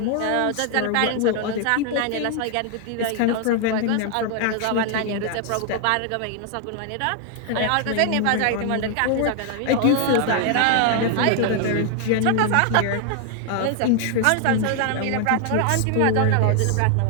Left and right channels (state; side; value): different; both; correlation 0.00